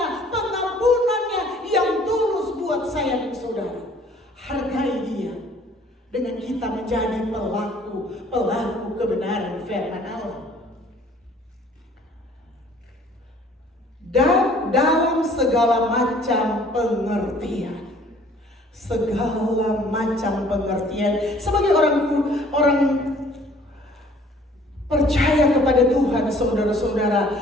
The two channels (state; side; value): normal; both; correlation 0.55